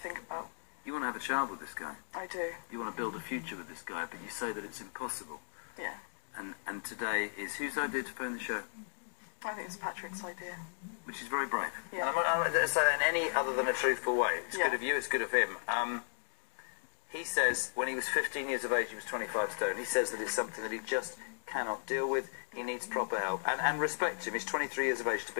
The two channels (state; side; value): silent; right; digital silence